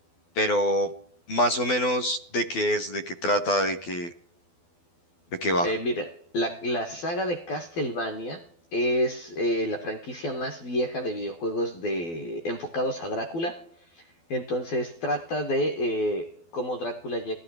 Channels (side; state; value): right; late; 12 ms